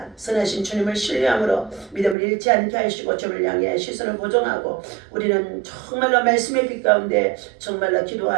선하신 주님을 신뢰함으로 믿음을 잃지 않게 하시고 주를 향해 시선을 고정하고 우리는 정말로 말씀의 빛 가운데 정말로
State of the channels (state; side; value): drops out; left; at 2.1 s